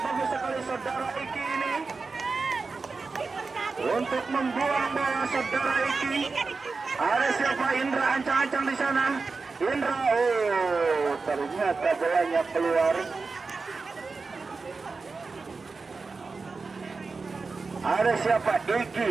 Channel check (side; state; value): left; quieter; 4.3 dB